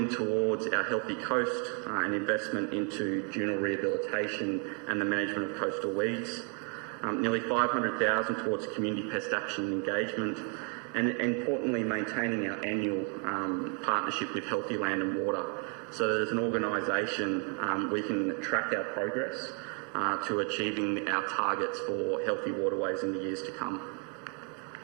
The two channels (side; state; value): left; quieter; 38.6 dB